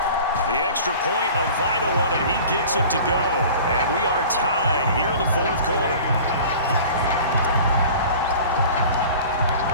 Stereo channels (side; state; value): both; inverted; correlation -0.42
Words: The extra point, a vital one, and he gets it to go. And we are tied here in the fourth quarter.